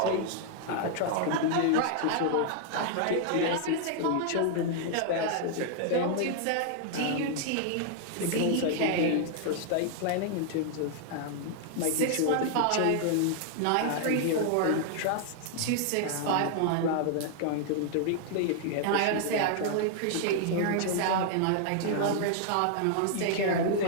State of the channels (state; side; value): different; both; correlation 0.00